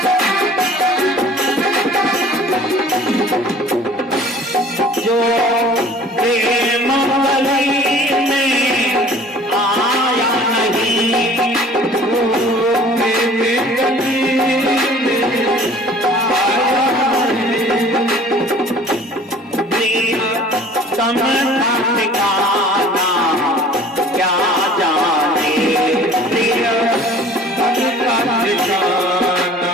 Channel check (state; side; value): normal; both; correlation 0.49